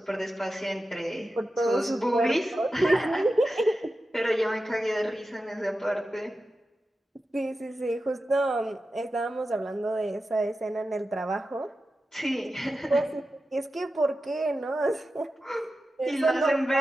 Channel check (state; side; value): normal; both; correlation 0.92